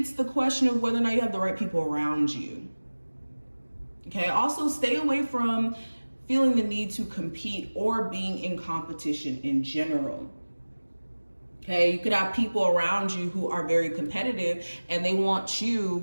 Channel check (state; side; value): inverted; both; correlation -1.00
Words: the question of whether or not you have the right people around you. Okay, also stay away from feeling the need to compete or being in competition in general. Okay, you could have people around you who are very competitive and they want